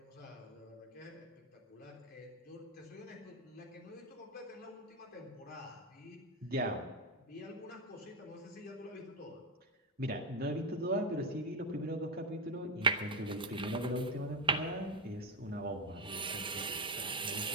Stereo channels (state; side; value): normal; both; correlation 0.07